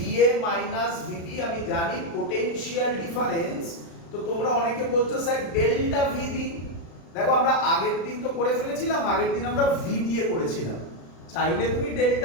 মাইনাস VD আমি জানি পোটেনশিয়াল ডিফারেন্স। তো তোমরা অনেকে বলছো স্যার ডেল্টা VD। দেখো আমরা আগের দিন তো করে ফেলেছিলাম, আগের দিন আমরা V দিয়ে করেছিলাম। চাইলে তুমি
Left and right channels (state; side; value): late; right; 35 ms